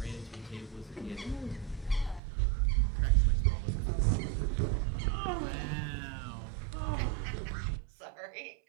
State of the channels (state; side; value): drops out; left; at 2.2 s